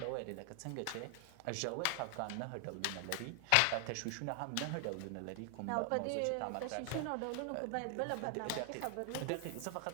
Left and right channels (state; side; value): different; both; correlation 0.00